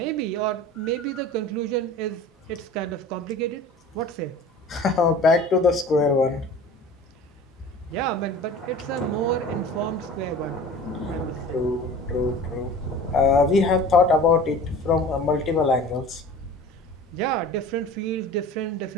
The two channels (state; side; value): normal; both; correlation 0.40